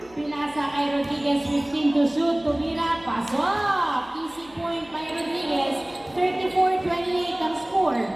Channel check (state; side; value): noise; left; hum, 27 dB below the sound